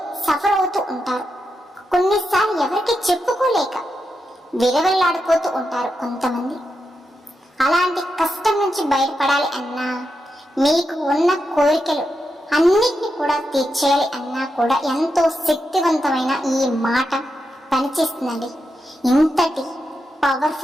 సఫర్ అవుతూ ఉంటారు. కొన్నిసార్లు ఎవరికి చెప్పుకోలేక విరవెల్లాడిపోతూ ఉంటారు కొంతమంది. అలాంటి కష్టం నుంచి బయటపడాలి అన్నా, మీకు ఉన్న కోరికలు అన్నిటిని కూడా తీర్చేయాలి అన్నా కూడా ఎంతో శక్తివంతమైన ఈ మాట పనిచేస్తుందండి. ఇంతటి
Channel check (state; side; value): normal; both; correlation 0.86